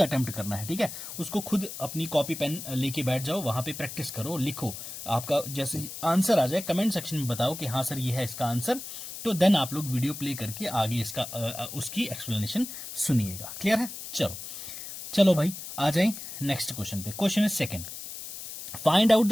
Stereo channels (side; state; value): left; noise; hiss, 10 dB below the sound